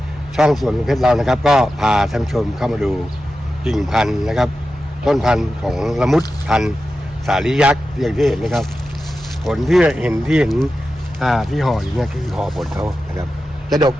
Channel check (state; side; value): normal; both; correlation 0.92